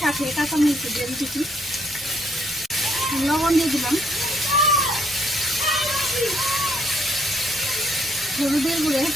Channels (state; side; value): normal; both; correlation 0.68